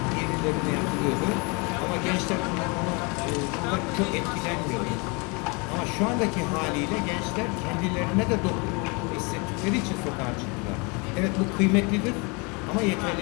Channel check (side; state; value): right; quieter; 30.2 dB